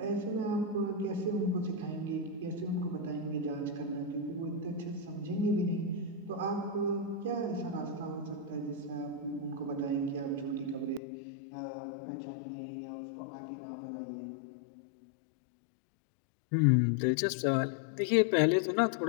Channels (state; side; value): drops out; right; at 11.0 s